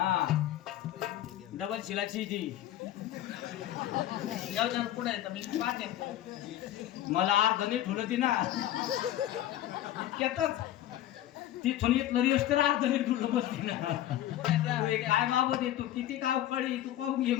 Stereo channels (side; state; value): right; quieter; 12.8 dB